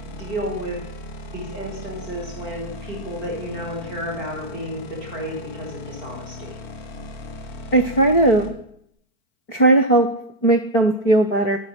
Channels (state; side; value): late; right; 4.5 ms